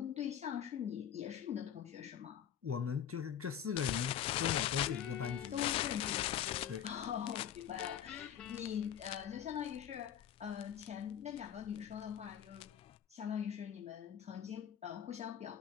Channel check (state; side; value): quieter; right; 9.5 dB